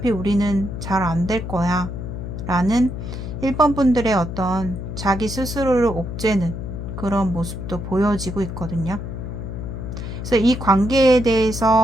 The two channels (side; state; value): left; noise; hum, 7 dB below the sound